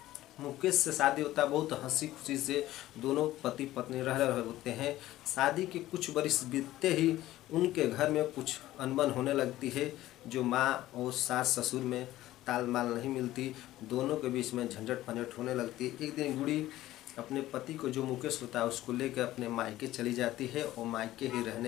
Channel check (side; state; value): right; quieter; 15.3 dB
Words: मुकेश से शादी होता है, बहुत हंसी खुशी से दोनों पति पत्नी रह रहे होते हैं। शादी के कुछ वर्ष बीतते ही उनके घर में कुछ अनबन होने लगती है। जो माँ और सास ससुर में तालमाल नहीं मिलती, दोनों के बीच में झंझट पंझट होने लगती है। एक दिन गुड़ी अपने पति को जो मुकेश होता है उसको लेकर अपने मायके चली जाती है और मायके ही